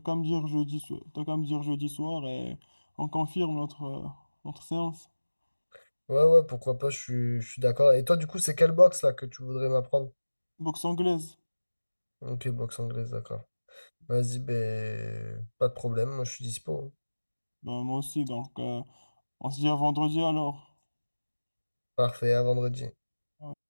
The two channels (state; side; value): inverted; both; correlation -1.00